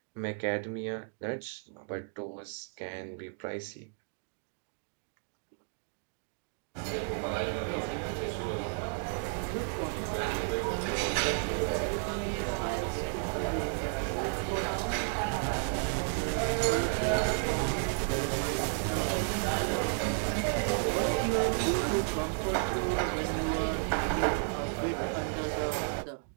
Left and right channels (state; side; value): silent; left; 56 dB below the other